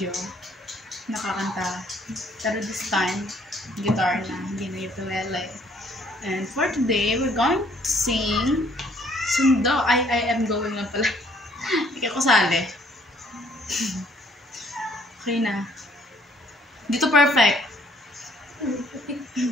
nakakanta, pero this time guitar na, hindi na ukulele. And for today we're going to sing Sundo. I am going na pala. Hindi ako sali. Okay na, dito perfect.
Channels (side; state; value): both; normal; correlation 0.62